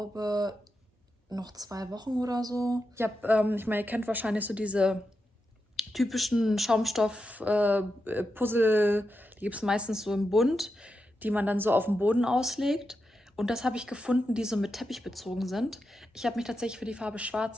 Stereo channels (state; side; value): normal; both; correlation 0.88